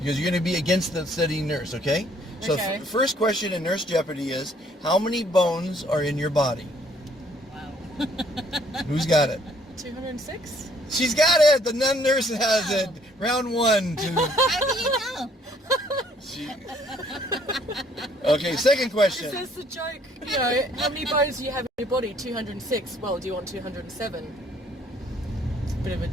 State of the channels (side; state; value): both; normal; correlation 0.63